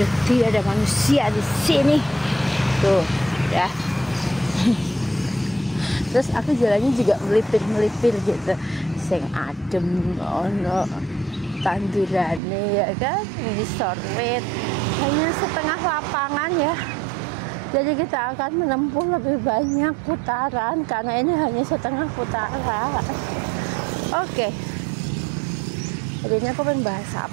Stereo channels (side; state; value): left; drops out; at 12.4 s